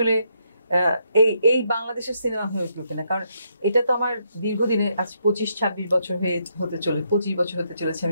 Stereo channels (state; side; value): inverted; both; correlation -0.76